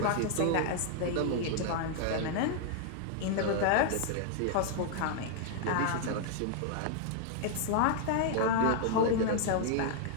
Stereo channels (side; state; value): both; different; correlation 0.00